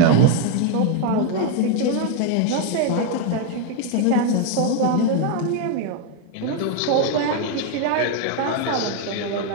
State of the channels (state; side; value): different; both; correlation 0.01